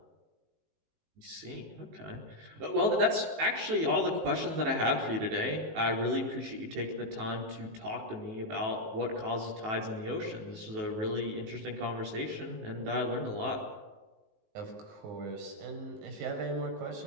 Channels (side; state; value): left; late; 19 ms